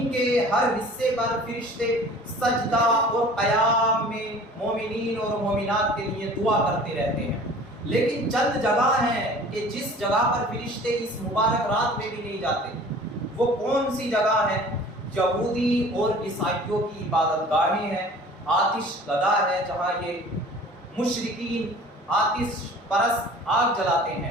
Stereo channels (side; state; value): both; normal; correlation 0.46